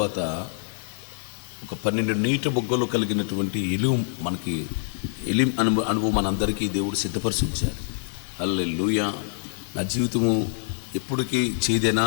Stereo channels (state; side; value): silent; right; 61 dB below the other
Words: ఒక 12 నీటి బొగ్గలు కలిగినటువంటి ఎలిము మనకి అనుభవం మనందరికీ దేవుడు సిద్ధపరిచి ఉంచారు. హల్లెలూయా. నా జీవితము ఎప్పటికీ